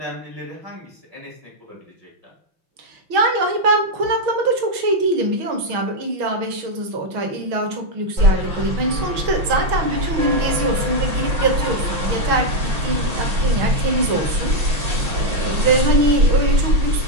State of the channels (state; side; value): late; left; 6.3 ms